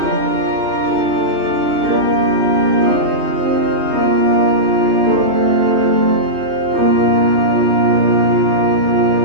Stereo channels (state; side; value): late; left; 3.1 ms